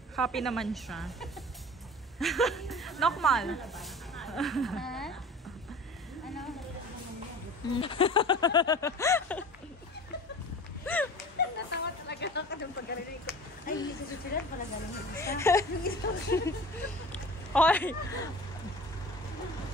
Happy naman siya. Normal. Ha? Ano? Natawa talaga ako ng pagkarinig ko. Ay, hindi sa susunod pala galing yung isa. Hoy!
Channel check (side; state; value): both; normal; correlation 0.40